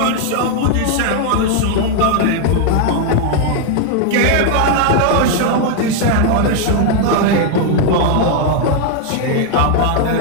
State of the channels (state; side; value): different; both; correlation 0.00